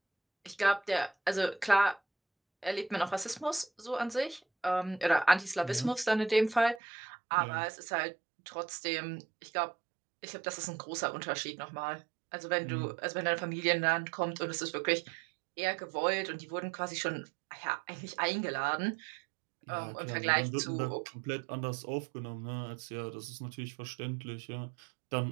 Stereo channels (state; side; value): drops out; left; at 6.8 s